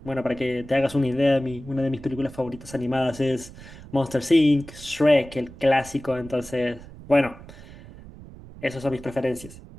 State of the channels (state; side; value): noise; right; rumble, 17 dB below the sound